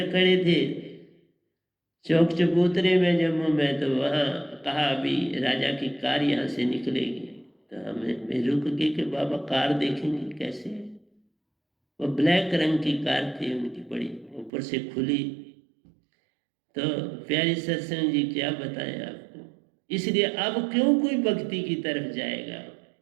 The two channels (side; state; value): left; drops out; at 14.5 s